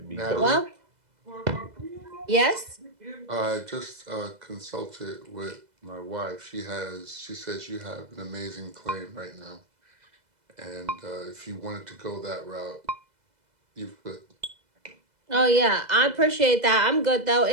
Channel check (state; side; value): late; left; 2.0 ms